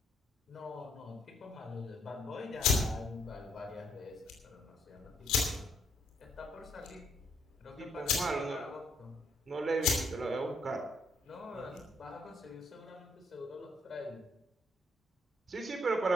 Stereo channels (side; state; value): both; normal; correlation 0.71